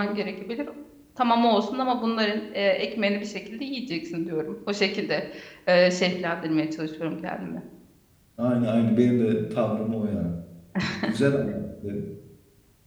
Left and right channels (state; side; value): identical; both; correlation 1.00